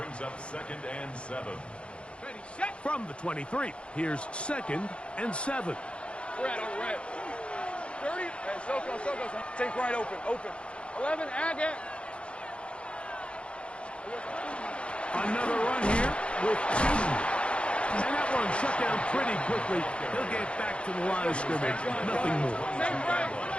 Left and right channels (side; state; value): right; late; 0.059 ms